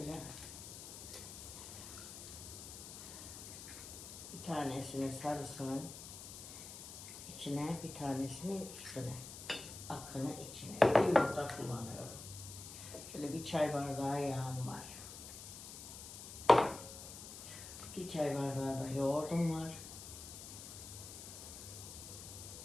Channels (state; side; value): noise; left; hiss, 11 dB below the sound